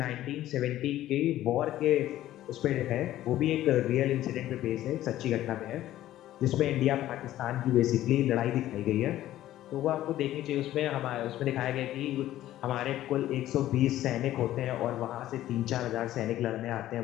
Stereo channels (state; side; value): quieter; right; 13.8 dB